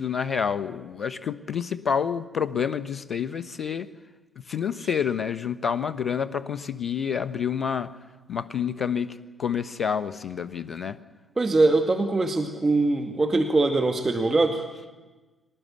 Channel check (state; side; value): normal; both; correlation 0.78